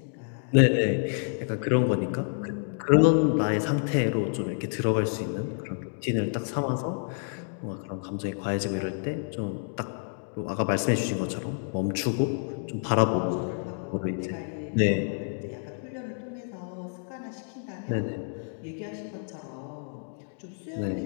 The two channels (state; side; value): silent; right; 59 dB below the other